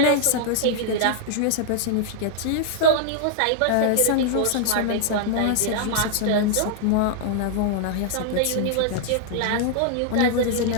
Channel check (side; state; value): both; different; correlation -0.01